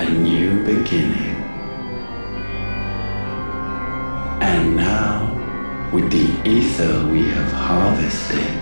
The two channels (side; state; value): both; inverted; correlation -1.00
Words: a new beginning. And now, with the ether we have harvested,